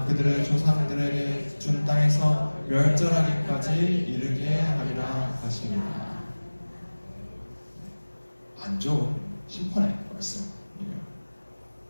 그들의 조상들에게 준 땅에서 멸절하기까지 이르게 하리라 하시니라. 안 좋은 심판의 말씀이에요.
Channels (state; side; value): inverted; both; correlation -1.00